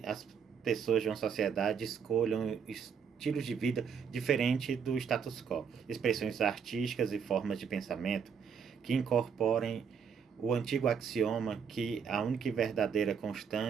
as pessoas de uma sociedade escolham estilos de vida diferentes do status quo, expressões artísticas e formas de pensamento que incorporem o antigo axioma que a única e verdadeira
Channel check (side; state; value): left; quieter; 6.8 dB